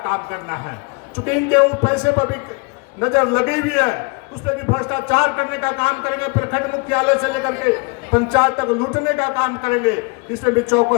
काम करना है। चूंकि इनके उस पैसे पर भी नजर लगी हुई है, उस पर भी भ्रष्टाचार करने का काम करेंगे, प्रखंड मुख्यालय से लेकर के पंचायत तक लूटने का काम करेंगे। इसमें भी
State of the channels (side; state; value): right; quieter; 31.5 dB